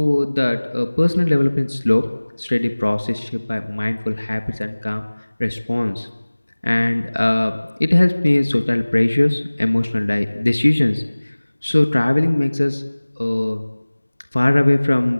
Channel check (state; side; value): inverted; both; correlation -1.00